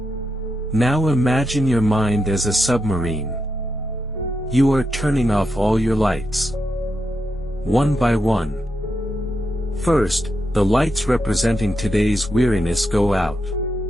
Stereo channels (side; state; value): both; normal; correlation 0.85